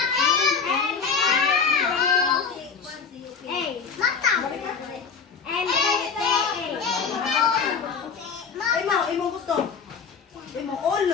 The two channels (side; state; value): right; quieter; 5.7 dB